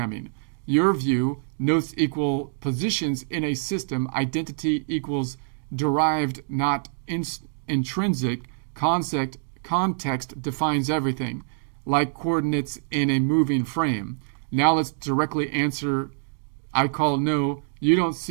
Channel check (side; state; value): left; silent; digital silence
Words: Your view, notes equal positions in a system, identity equals derived, not intrinsic. Context defines everything, like coordinates in a moving frame. Now let's directly answer, I call no. You don't